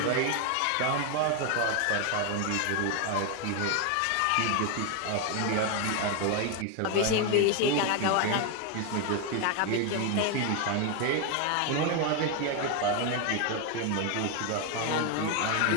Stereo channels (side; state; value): both; different; correlation 0.01